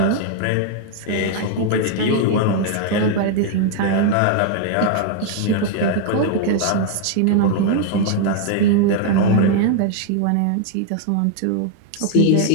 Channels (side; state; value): both; different; correlation 0.00